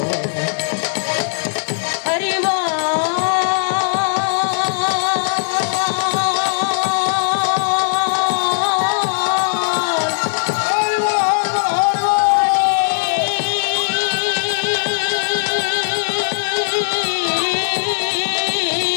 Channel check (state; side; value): silent; right; 67 dB below the other